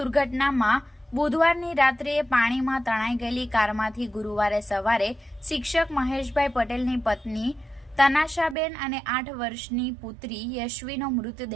બુધવારની રાત્રે પાણીમાં તણાઈ ગયેલી કારમાંથી ગુરુવારે સવારે શિક્ષક મહેશભાઈ પટેલની પત્ની તનાશાબેન અને 8 વર્ષની પુત્રી યશવીનો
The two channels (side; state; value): left; drops out; at 8.6 s